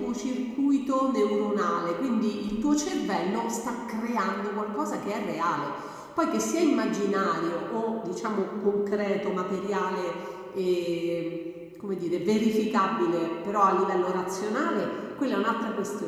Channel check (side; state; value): both; identical; correlation 1.00